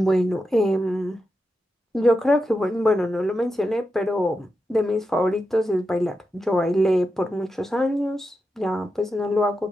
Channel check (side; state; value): both; normal; correlation 0.88